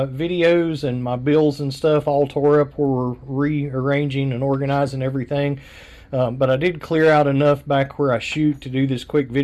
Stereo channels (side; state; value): both; identical; correlation 1.00